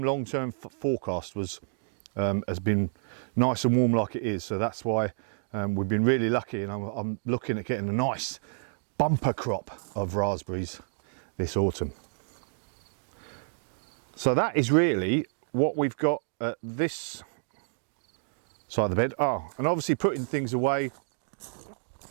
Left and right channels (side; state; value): left; silent; digital silence